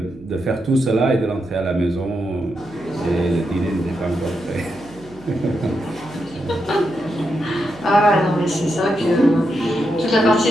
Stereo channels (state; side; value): noise; right; hum, 23 dB below the sound